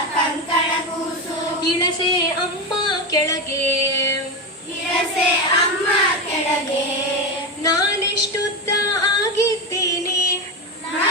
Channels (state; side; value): normal; both; correlation 0.16